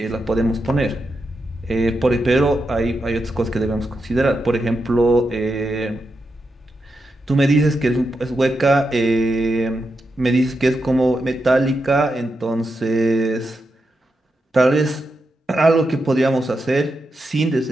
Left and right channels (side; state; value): both; normal; correlation 0.86